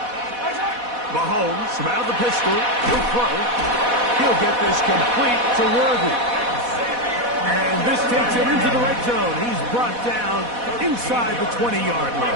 Mahomes from out of the pistol. He'll throw. He'll get this complete to Worthy. And this takes him into the red zone. He's brought down inside the 20-yard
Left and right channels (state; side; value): late; left; 4.1 ms